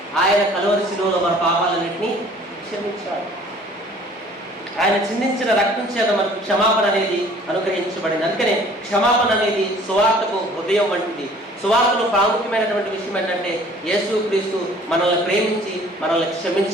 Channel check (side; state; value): both; normal; correlation 0.53